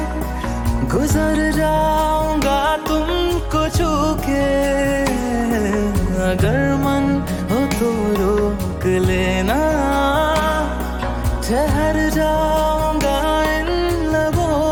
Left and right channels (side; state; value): both; identical; correlation 1.00